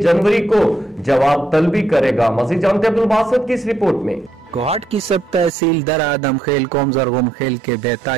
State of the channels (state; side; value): drops out; left; at 5.5 s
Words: जनवरी को जवाब तलबी करेगा। मजीद जानते अब्दुल बासित की इस रिपोर्ट में। कोहाट की सब तहसील दर्रा आदम खेल कौम जरगुम खेल के